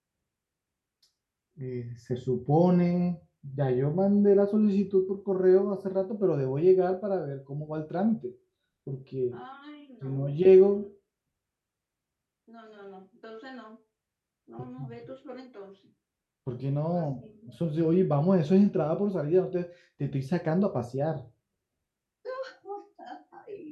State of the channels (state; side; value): identical; both; correlation 1.00